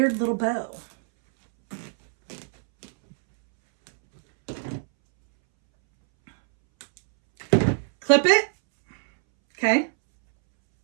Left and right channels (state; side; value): silent; left; 63 dB below the other